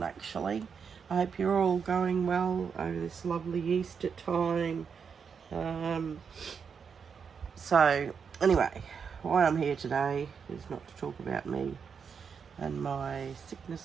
actually. I hope you're all going well over this lovely Easter time. So anyway, why I'm here today is not to talk about me and my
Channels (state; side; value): quieter; left; 6.4 dB